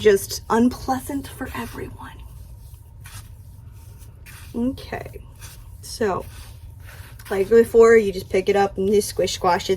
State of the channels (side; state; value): both; identical; correlation 1.00